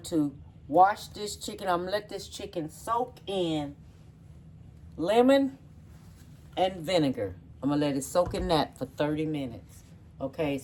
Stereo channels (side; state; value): both; identical; correlation 1.00